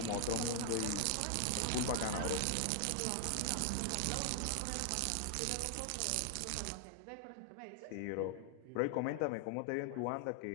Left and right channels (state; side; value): different; both; correlation 0.00